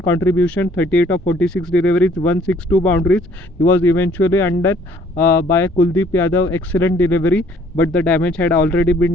contribution, 38 of 46 deliveries, 162 boundaries. He was eventually undone by Kuldeep Yadav. Excellent delivery, but the damage had already been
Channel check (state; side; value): normal; both; correlation 0.60